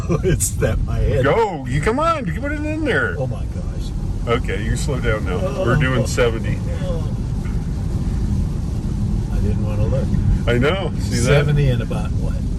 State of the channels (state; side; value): identical; both; correlation 1.00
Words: It's that my head. Go! You come on, you put it in there. Oh my gosh. Okay, you slow down now. We're doing 70. I didn't want to look. I know. See that? 70 in about what?